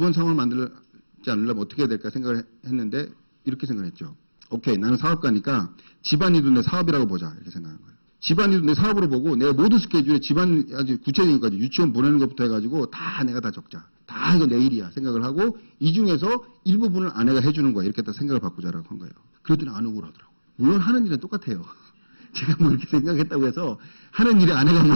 상황을 만들지 않으려면 어떻게 해야 될까 생각을 했는데 이렇게 생각했죠. 오케이. 나는 사업가니까 집안일도 내 사업이라고 보자. 이렇게 생각한 거예요. 집안일도 내 사업으로 보고 내가 모든 스케줄에 집안 아주 구체적인 것까지 유치원 보내는 것부터 해가지고 다 내가 다 적자. 다 이거 내 일이야 생각을 하고 이 중에서 일부분을 아내가 해주는 거야. 이렇게 다 생각을 바꾸자라고 한 거예요. 그랬더니 안 억울하더라고요. 물론 하는 일은 똑같아요. 제가 뭐 이렇게 생각했다고 해서 하는 일에 아내가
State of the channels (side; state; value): both; inverted; correlation -1.00